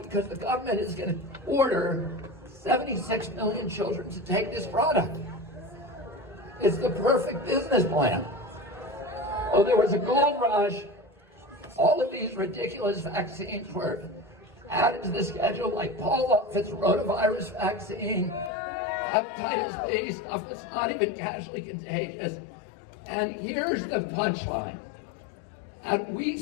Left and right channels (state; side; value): drops out; right; at 18.5 s